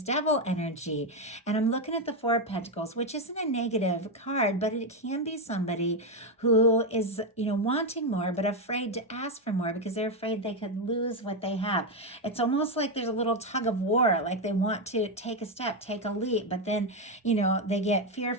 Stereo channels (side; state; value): both; normal; correlation 0.06